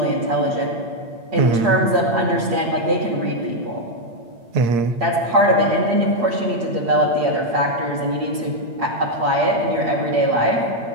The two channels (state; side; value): late; left; 8.7 ms